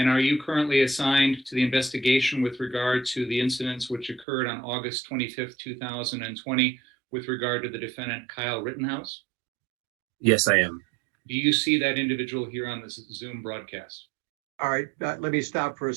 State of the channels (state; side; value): drops out; left; at 4.2 s